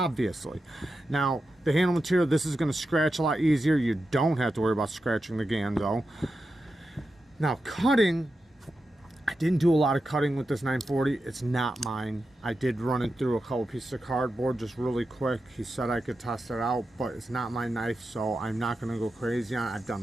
Now, the handle material, this is going to scratch a lot easier. You don't have to worry about scratching the Ganzo. Now, cutting, I didn't do a lot of cutting with this 940. It's not mine. I did run it through a couple pieces of cardboard just really quick. He said I could test it out, but it's not my knife, so I'm not going to go crazy on it. I've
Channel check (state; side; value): normal; both; correlation 0.90